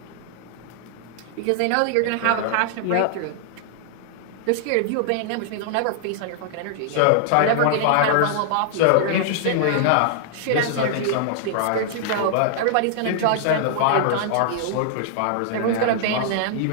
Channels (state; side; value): different; both; correlation -0.01